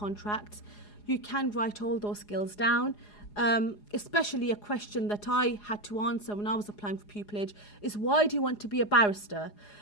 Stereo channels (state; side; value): late; right; 4.8 ms